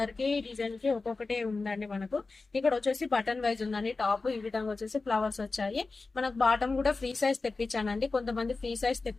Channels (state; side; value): quieter; right; 3.8 dB